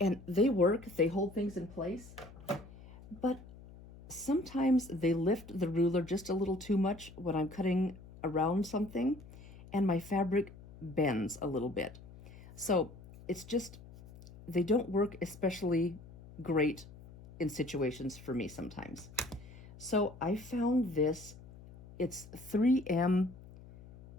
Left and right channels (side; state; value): left; noise; hum, 18 dB below the sound